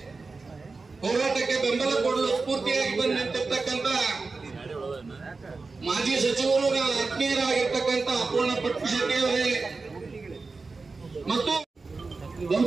ಹೋರಾಟಕ್ಕೆ ಬೆಂಬಲ ಕೊಡಲು ಸ್ಫೂರ್ತಿಯಾಗಿ ಬಂದು ನಿಂತಿರ್ತಕ್ಕಂಥ ಮಾಜಿ ಸಚಿವರು ಆತ್ಮೀಯರಾಗಿರ್ತಕ್ಕಂಥ ಅಪೂರ್ಣ ಪಟ್ಪಶೆಟ್ಟಿ ಅವರೇ ಮತ್ತು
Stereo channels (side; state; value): left; quieter; 4.0 dB